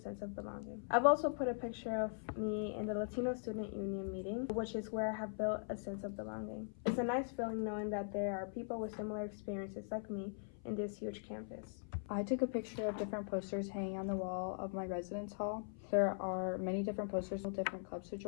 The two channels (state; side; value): silent; right; 50 dB below the other